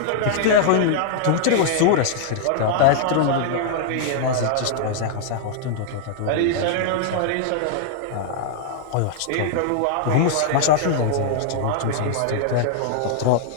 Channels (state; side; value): different; both; correlation -0.01